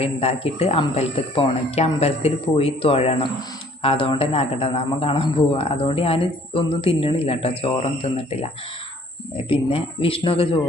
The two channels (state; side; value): normal; both; correlation 0.57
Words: ഉണ്ടാക്കിയിട്ട് അമ്പലത്തിൽ പോകണം. എനിക്ക് അമ്പലത്തിൽ പോയി തൊഴണം. അതുകൊണ്ട് തന്നെ അകടനാമം കാണാൻ പോവുക. അതുകൊണ്ട് ഞാൻ ഒന്നും തിന്നണില്ല കേട്ടോ, ചോറൊന്നും തിന്നിട്ടില്ല. പിന്നെ വിഷ്ണുവൊക്കെ